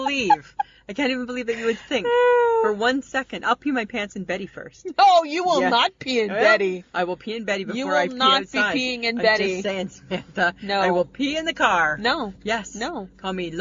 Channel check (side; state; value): both; identical; correlation 1.00